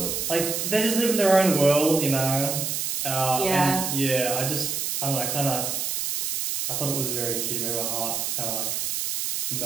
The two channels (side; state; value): right; noise; hiss, 1 dB below the sound